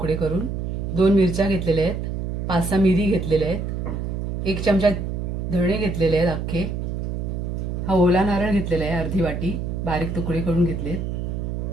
करून, 2 मिरच्या घेतलेल्या आहेत, 5-6 मिरी घेतलेल्या आहेत, 1 चमचा धणे घेतलेले आहेत अख्खे। हा ओला नारळ घेतलेला आहे अर्धी वाटी, बारीक तुकडे करून घेतलेत।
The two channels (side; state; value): right; noise; hum, 3 dB below the sound